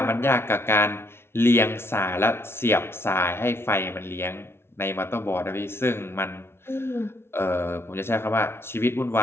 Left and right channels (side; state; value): right; late; 0.12 ms